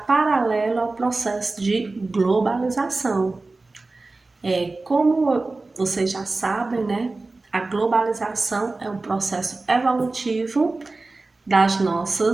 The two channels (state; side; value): quieter; left; 3.4 dB